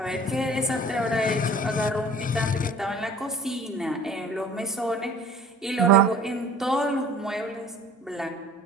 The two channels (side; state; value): both; normal; correlation 0.48